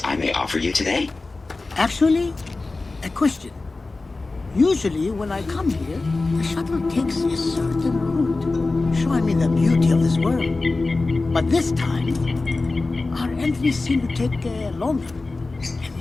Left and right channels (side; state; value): right; quieter; 3.5 dB